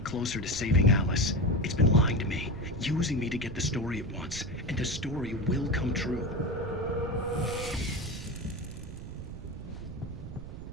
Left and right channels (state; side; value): noise; right; rumble, 10 dB below the sound